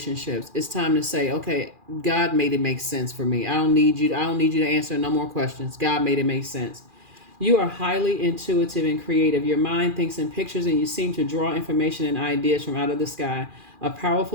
It's time to say, okay, God made it make sense for me. I don't need you to answer no more questions. God made it make sense. You are highly intuitive and creative. Your mind thinks in pictures and you seem to draw information and ideas from out of the sky. A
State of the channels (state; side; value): late; left; 2.4 ms